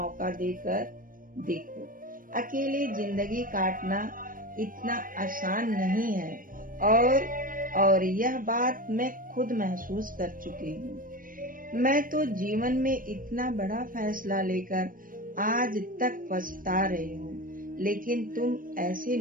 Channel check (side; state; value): left; late; 0.40 ms